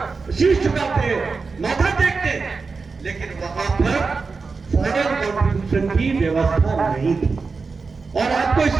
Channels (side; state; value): left; quieter; 4.5 dB